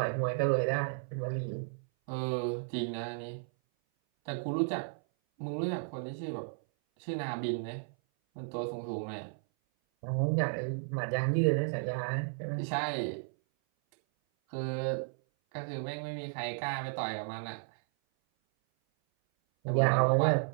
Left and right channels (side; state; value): left; silent; 55 dB below the other